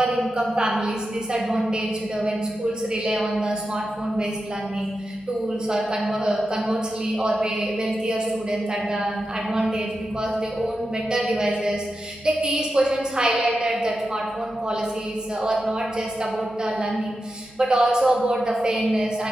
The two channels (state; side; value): noise; right; hum, 28 dB below the sound